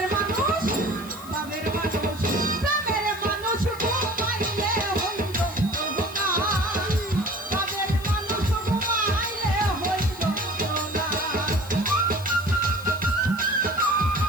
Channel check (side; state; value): left; noise; hiss, 18 dB below the sound